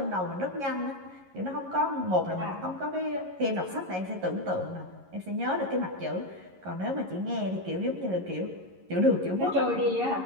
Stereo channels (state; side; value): late; left; 11 ms